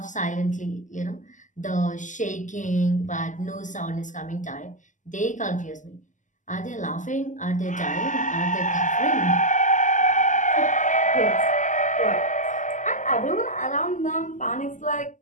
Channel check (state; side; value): late; right; 0.37 ms